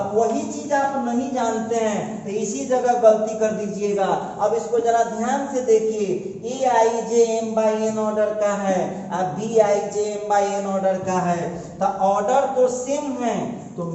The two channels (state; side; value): identical; both; correlation 1.00